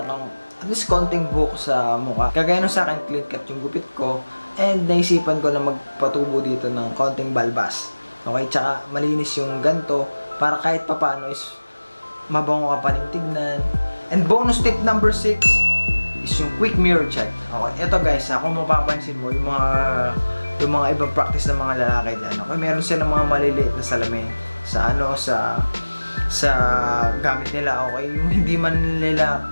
kang at least konting buhok sa mukha. Kagaya nung sa akin, clean cut yung gupit ko, and naisipan ko na magpatubo dito ng konting balbas. Okay, tsaka malinis yung ganto, para kahit papano is mabango ka pa rin tignan. And bonus tip number 6 is yung quick mirror check. Okay, ito guys, kung mapapansin mo, yung mga ibang practice ng mga lalaki dyan, okay, meron silang mga maliliit na salamin sa gamit nila, okay, yung hindi man nila,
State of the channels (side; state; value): both; inverted; correlation -1.00